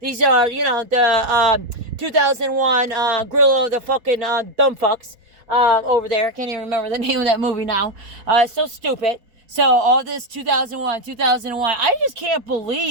These are, you know, the 2001 Grill of the fucking dumb fucks over there. I can't even remember the name of that movie now. It's so stupid. So all this 2001. I just can't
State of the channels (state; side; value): late; left; 4.2 ms